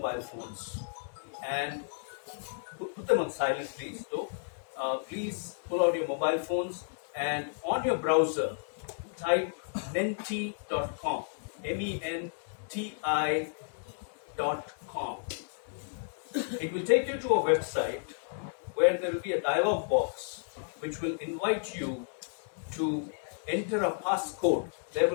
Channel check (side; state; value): right; silent; 56 dB below the other